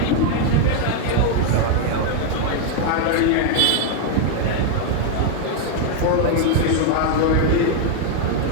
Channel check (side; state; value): both; different; correlation 0.00